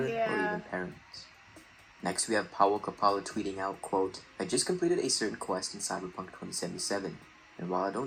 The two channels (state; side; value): identical; both; correlation 1.00